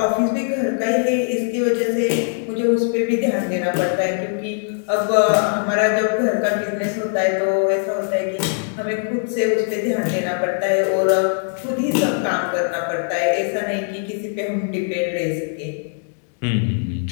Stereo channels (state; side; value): silent; right; digital silence